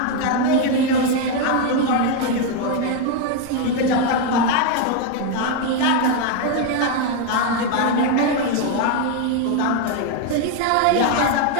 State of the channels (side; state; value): both; different; correlation 0.01